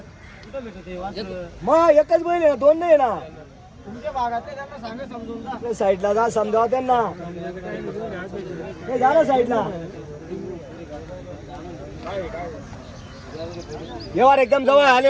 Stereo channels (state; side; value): identical; both; correlation 1.00